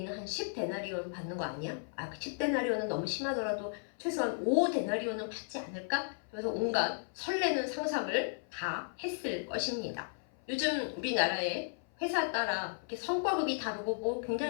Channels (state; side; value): silent; right; 55 dB below the other